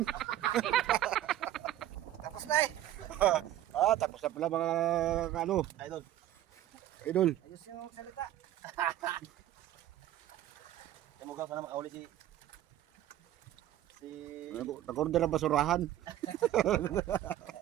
Tapos na eh. Tapos na pala mga, ano, Idol. idol. Ayos yung salita. Yung mugaw, sana makauli si... Nag-order ang basurahan.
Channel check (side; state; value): left; quieter; 13.0 dB